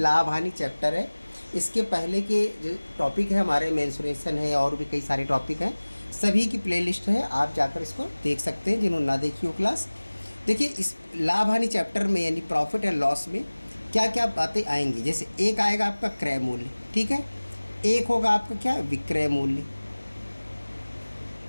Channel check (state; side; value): inverted; both; correlation -1.00